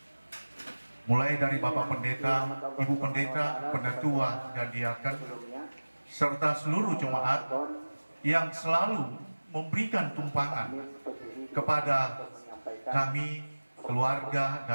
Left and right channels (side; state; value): both; inverted; correlation -1.00